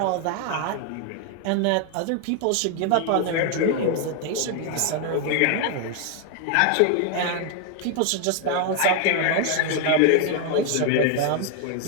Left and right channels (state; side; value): different; both; correlation 0.01